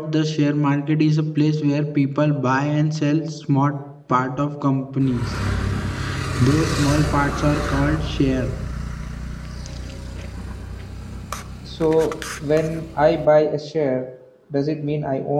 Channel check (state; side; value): identical; both; correlation 1.00